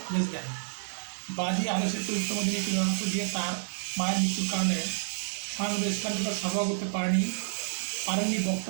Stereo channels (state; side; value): silent; left; digital silence